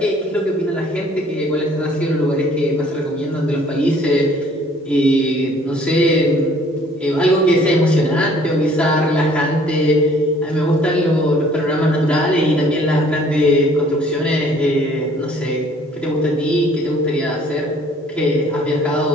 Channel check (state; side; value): normal; both; correlation 0.57